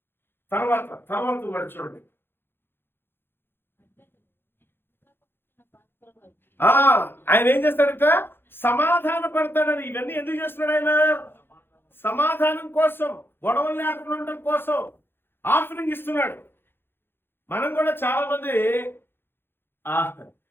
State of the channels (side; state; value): right; late; 0.10 ms